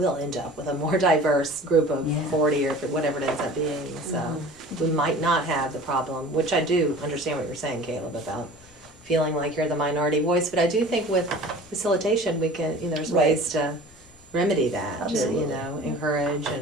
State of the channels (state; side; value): normal; both; correlation 0.42